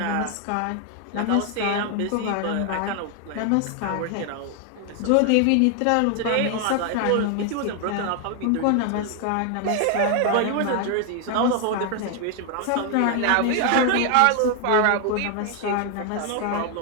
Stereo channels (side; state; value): both; different; correlation 0.00